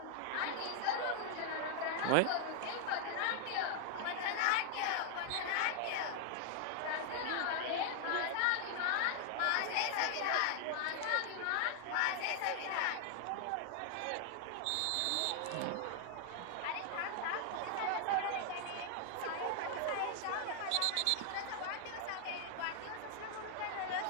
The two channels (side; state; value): both; different; correlation 0.00